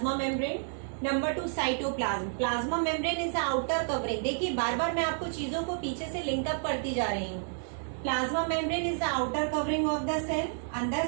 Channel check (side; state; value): left; silent; 58 dB below the other